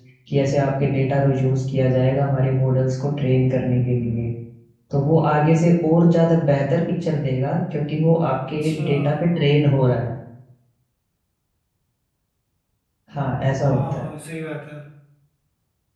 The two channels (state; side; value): identical; both; correlation 1.00